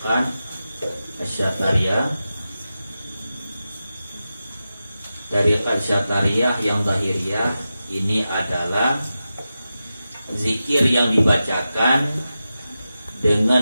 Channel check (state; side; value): inverted; both; correlation -0.92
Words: Syatariyah. Tariqat Syatariyah yang zahiriyah ini adalah zikir yang dibacakan